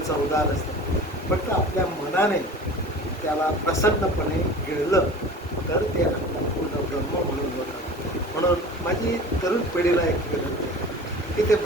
असतं. फक्त आपल्या मनाने त्याला प्रसन्नपणे गिळलं तर ते अन्न पूर्ण ब्रह्म म्हणून होतं. म्हणून माझी तरुण पिढीला एक विनंती आहे की ते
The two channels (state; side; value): normal; both; correlation 0.39